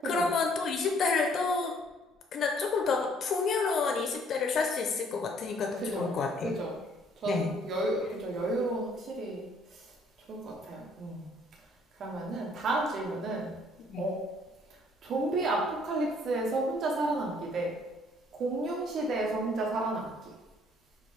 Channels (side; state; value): both; normal; correlation 0.62